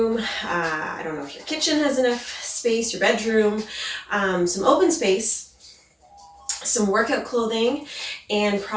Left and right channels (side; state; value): both; identical; correlation 1.00